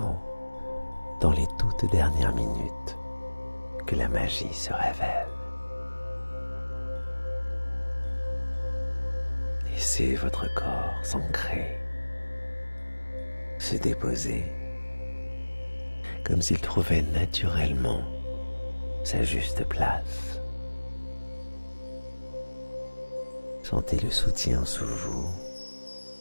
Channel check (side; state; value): both; inverted; correlation -1.00